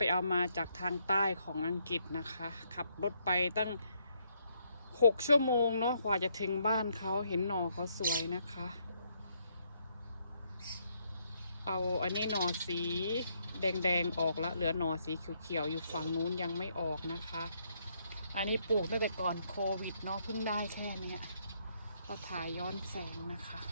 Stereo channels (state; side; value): inverted; both; correlation -0.73